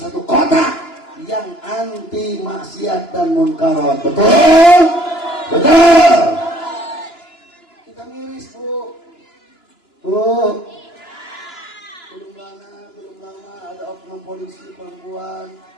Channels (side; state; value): right; late; 2.9 ms